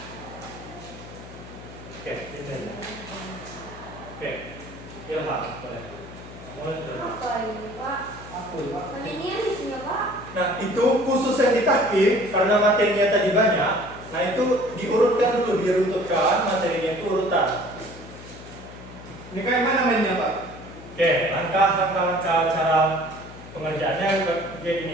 Oke, ini. Oke, Ilham boleh. Mulai. Apa ini Pak? Aku Pak. Kan ini yang isinya Pak. Nah, itu khusus yang di tahkim karena materinya tadi banyak. Nah, itu diurutkan dulu, diruntutkan materinya itu urutan. Ini kayak mana mainnya Pak? Oke, langkah-langkah cara pengerjaannya kayak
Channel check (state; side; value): noise; left; hum, 16 dB below the sound